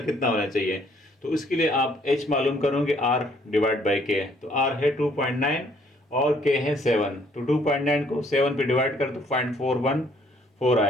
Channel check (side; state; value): both; normal; correlation 0.64